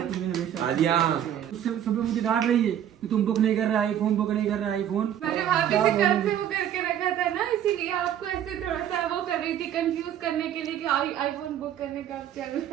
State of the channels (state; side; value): quieter; left; 10.4 dB